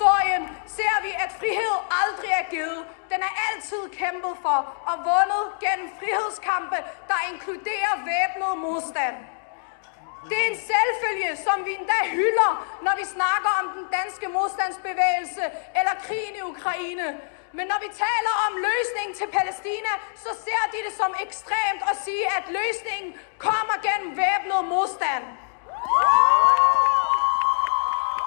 ser vi, at frihed aldrig er givet. Den er altid kæmpet for og vundet gennem frihedskampe, der inkluderer væbnet modstand. Det er en selvfølge, som vi endda hylder, når vi snakker om den danske modstandsbevægelse eller krigen i Ukraine. Men når vi taler om løsningen til Palæstina, så ser de det som ekstremt at sige, at løsningen kommer gennem væbnet modstand.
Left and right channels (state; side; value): silent; right; digital silence